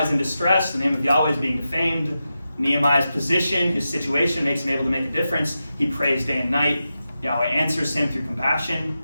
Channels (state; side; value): inverted; both; correlation -0.90